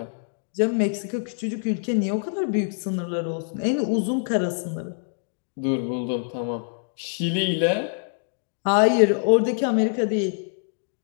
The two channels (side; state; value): right; silent; digital silence